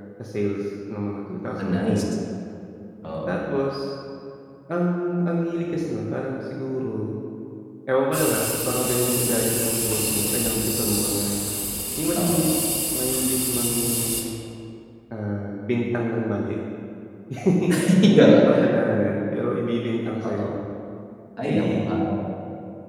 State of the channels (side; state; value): both; identical; correlation 1.00